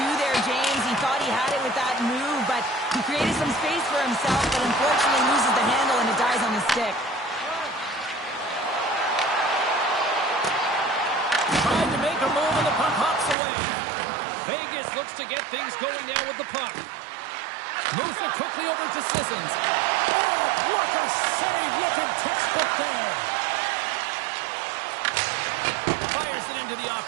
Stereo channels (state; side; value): drops out; left; at 13.4 s